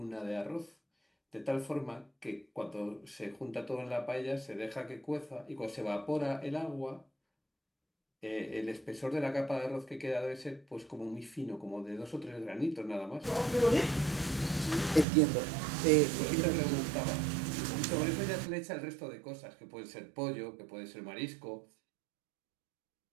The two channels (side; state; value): left; drops out; at 15.1 s